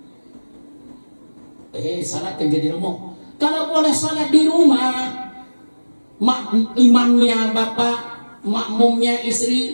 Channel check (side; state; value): both; inverted; correlation -1.00